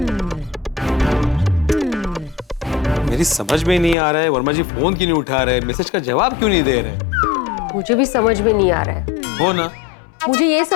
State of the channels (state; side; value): drops out; right; at 4.0 s